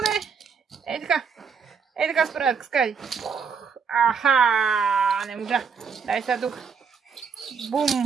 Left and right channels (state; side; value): quieter; left; 6.0 dB